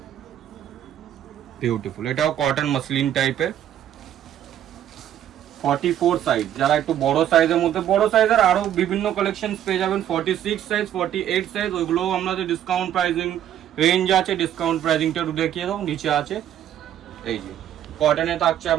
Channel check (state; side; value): quieter; left; 10.9 dB